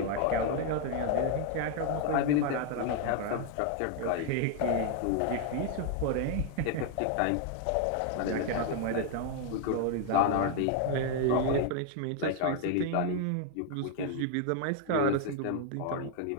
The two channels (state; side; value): different; both; correlation 0.00